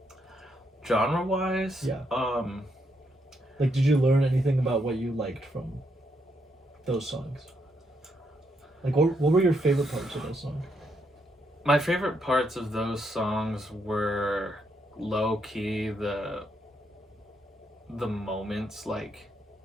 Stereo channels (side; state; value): both; normal; correlation 0.77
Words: Genre wise? Yeah. Like, did you learn anything about what you liked from those songs? Like, what were your favorite parts of those songs? My favorite parts of those songs were low key the moments, like